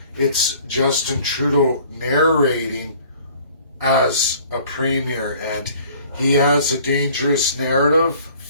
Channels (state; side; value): inverted; both; correlation -0.53